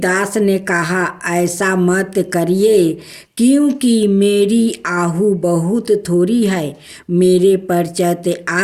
ने कहा, ऐसा मत करिए, क्योंकि मेरी आहु बहुत थोड़ी है। मेरे पश्चात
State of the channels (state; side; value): identical; both; correlation 1.00